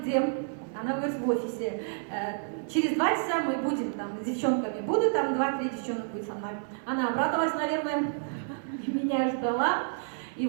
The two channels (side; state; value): left; silent; 58 dB below the other